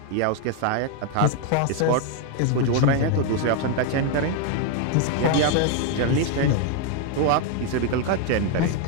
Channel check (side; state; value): both; different; correlation 0.00